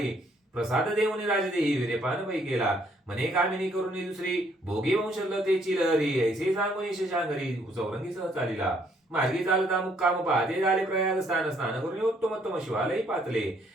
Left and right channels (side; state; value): both; normal; correlation 0.67